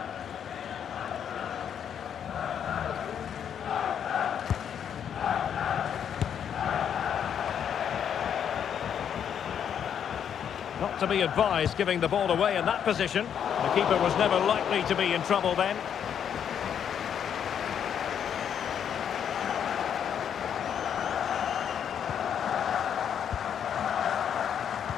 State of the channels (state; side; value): quieter; right; 8.5 dB